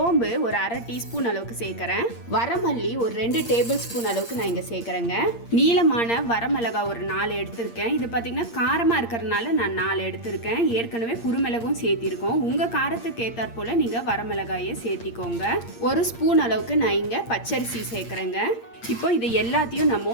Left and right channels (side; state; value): right; late; 8.6 ms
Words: ஒரு 1/2 டீஸ்பூன் அளவுக்கு சேர்க்குறேன். வரமல்லி ஒரு 2 டேபிள் ஸ்பூன் அளவுக்கு நான் இங்கே சேர்க்குறேங்க. நீளமான வரமிளகா ஒரு 4 எடுத்திருக்கேன். இது பார்த்தீங்கன்னா காரமாக இருக்கிறதுனால நான் 4 எடுத்திருக்கேன். ஏற்கனவே குருமிளகும் சேர்த்திருக்கோம். உங்கள் காரத்துக்கு ஏற்றாற் போல் நீங்கள் வரமிளகாயை சேர்த்திக்கோங்க. 1 ஸ்பூன் அளவுக்கு நான் இங்கே பச்சரிசி சேர்க்குறேங்க. இப்போ இது எல்லாத்தையும் நம்ம